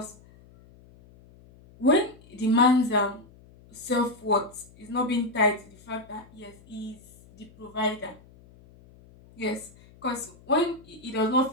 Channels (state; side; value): noise; left; hum, 25 dB below the sound